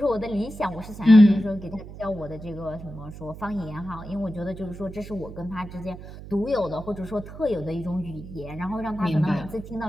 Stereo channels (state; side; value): noise; right; hum, 13 dB below the sound